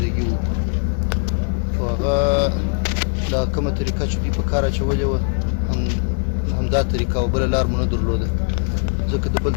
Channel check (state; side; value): silent; right; digital silence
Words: وکړو خو هغه دا کومه طریقه چې دوی په کار اچولې وه همدا طریقه او بله لار مو نه درلوده ځکه د بل